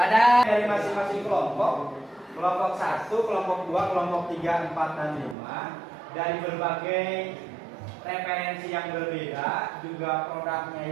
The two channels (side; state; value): left; drops out; at 5.4 s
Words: dari masing-masing kelompok 1, kelompok 2, kelompok 3, 4 dan 5 dari berbagai referensi yang berbeda, juga produknya